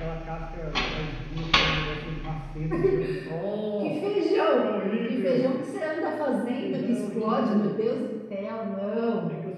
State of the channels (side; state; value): both; identical; correlation 1.00